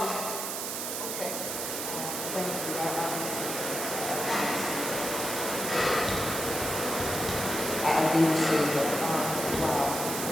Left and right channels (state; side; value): noise; right; hiss, 3 dB below the sound